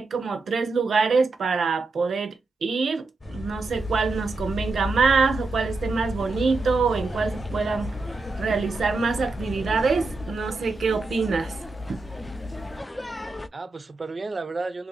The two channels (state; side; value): quieter; left; 3.6 dB